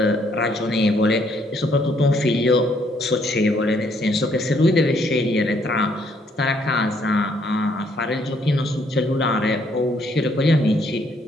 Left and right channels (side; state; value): both; normal; correlation 0.68